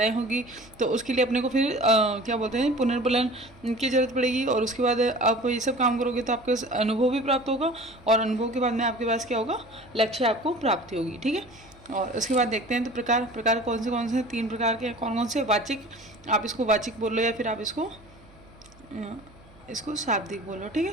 होगी। तो उसके लिए अपने को फिर क्या बोलते हैं, पुनर्बलन की जरूरत पड़ेगी। और उसके बाद आप ये सब काम करोगे तो आपको अनुभव भी प्राप्त होगा, और अनुभव के बाद में आपके पास क्या होगा? लक्ष्य आपको प्राप्ति होगी। ठीक है, और उसके बाद देखते हैं तो प्रकार कौन से 3 प्रकार के कौन से? वाचिक, आप इसको वाचिक बोल लो या फिर आप इसको शाब्दिक बोलो। ठीक है,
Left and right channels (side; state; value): right; noise; hum, 25 dB below the sound